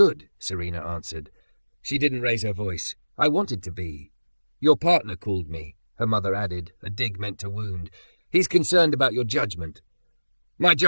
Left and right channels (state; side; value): inverted; both; correlation -1.00